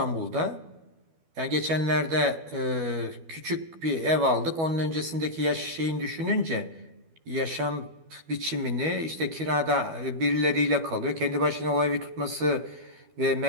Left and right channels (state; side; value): late; left; 12 ms